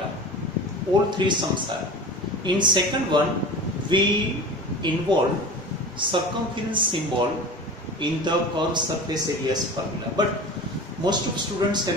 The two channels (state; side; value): normal; both; correlation 0.34